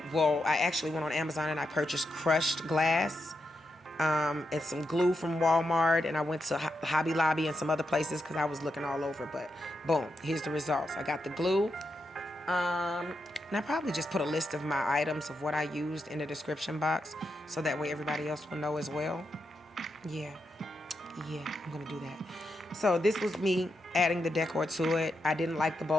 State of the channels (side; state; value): both; normal; correlation 0.85